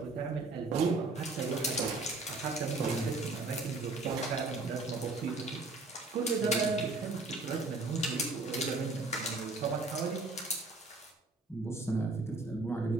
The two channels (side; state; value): left; quieter; 3.2 dB